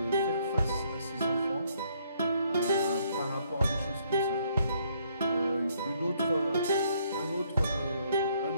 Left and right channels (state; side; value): inverted; both; correlation -0.68